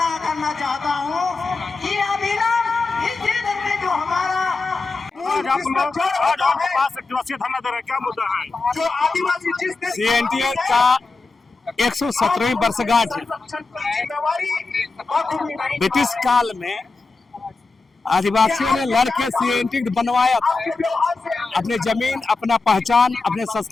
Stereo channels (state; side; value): quieter; right; 3.9 dB